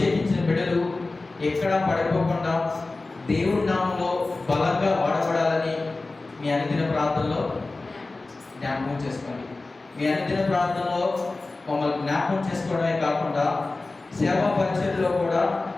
బిడ్డలు ఎక్కడా పడిపోకుండా దేవుడి నామంలో బలంగా వాడబడాలని మీ అనుదిన ప్రార్థనలో జ్ఞాపకం చేసుకోండి. మీ అనుదిన ప్రార్థనలో మమ్మల్ని జ్ఞాపకం చేసుకోవడమే కాకుండా సేవా పరిచర్యలో కూడా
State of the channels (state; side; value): quieter; right; 3.3 dB